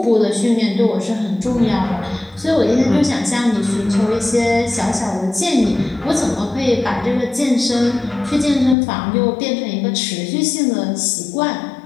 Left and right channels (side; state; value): right; drops out; at 8.8 s